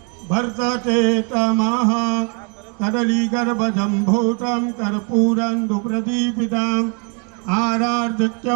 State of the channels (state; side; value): quieter; left; 36.5 dB